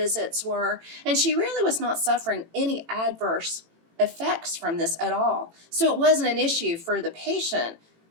were, and she really was not suffering any adverse effects from this at all. So it wasn't an issue for the patient.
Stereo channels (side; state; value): left; late; 18 ms